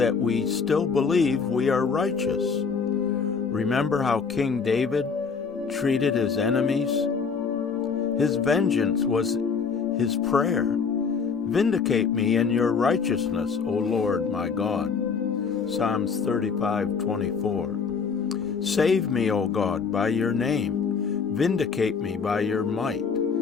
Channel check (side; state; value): right; quieter; 5.6 dB